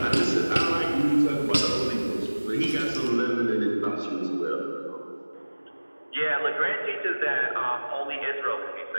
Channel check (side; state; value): both; inverted; correlation -1.00